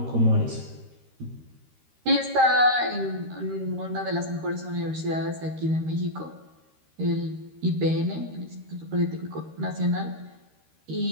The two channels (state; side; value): late; left; 13 ms